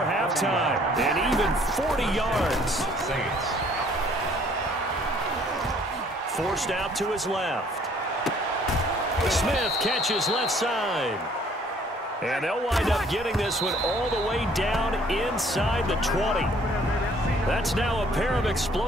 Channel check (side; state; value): both; normal; correlation 0.59